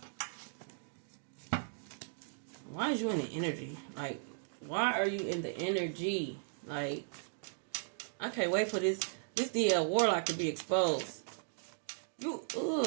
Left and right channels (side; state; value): left; silent; digital silence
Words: Why is you in the energy? Like, why are you in the energy? Like, I can't wait for this DL Warlock to be exposed. You